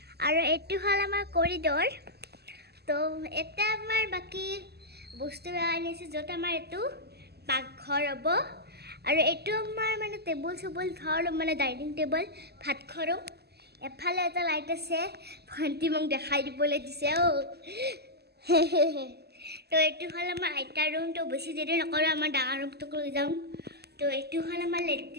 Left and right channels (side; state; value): left; late; 0.47 ms